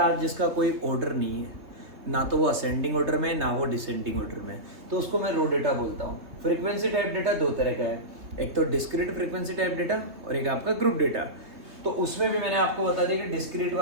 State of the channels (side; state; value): left; late; 3.3 ms